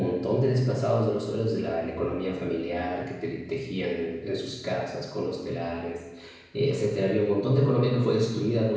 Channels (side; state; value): both; identical; correlation 1.00